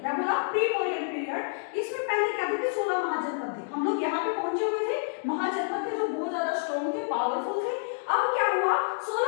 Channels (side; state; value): right; silent; digital silence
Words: क्या बोला? Pre Maurya period. इसमें पहले क्या थे? 16 महाजनपद थे। हम लोग यहाँ पे पहुंचे हुए थे, महाजनपद थे जो बहुत ज्यादा स्ट्रॉन्ग थे, पावरफुल थे। अब क्या हुआ,